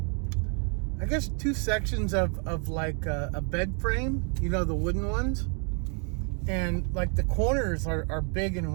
sections of like a bed frame, the wooden ones. And like the corners are big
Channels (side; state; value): left; quieter; 38.9 dB